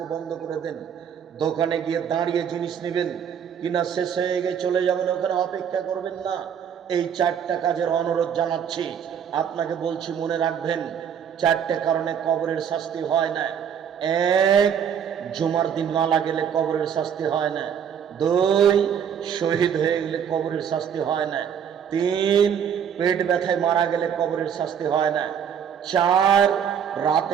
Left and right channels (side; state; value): left; quieter; 8.1 dB